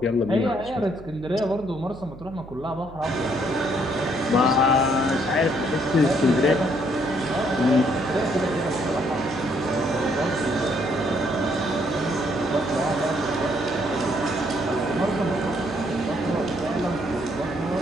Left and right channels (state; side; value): noise; right; hum, 18 dB below the sound